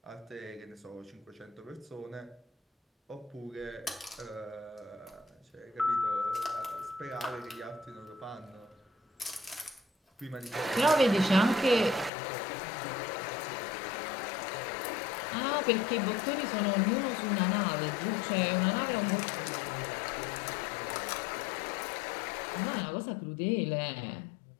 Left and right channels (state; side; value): drops out; right; at 12.1 s